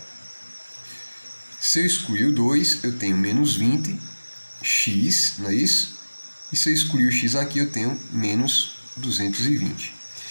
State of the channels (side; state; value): both; inverted; correlation -1.00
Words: se eu excluir o 2, eu tenho menos 20x, não é isso? E se eu excluir o x aqui, eu tenho menos 220.